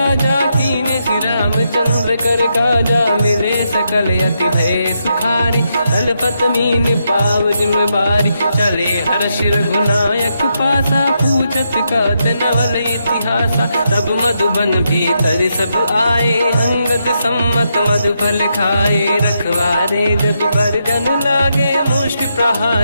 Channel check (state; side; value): inverted; both; correlation -0.81